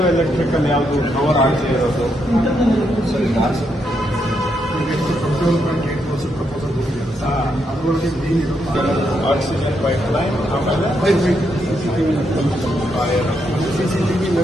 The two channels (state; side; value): normal; both; correlation 0.79